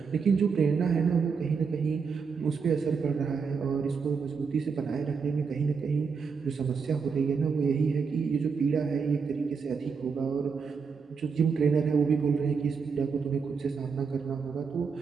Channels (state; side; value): quieter; left; 5.6 dB